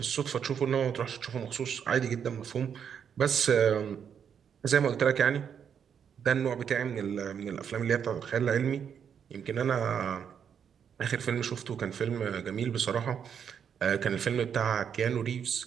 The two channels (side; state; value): left; quieter; 7.8 dB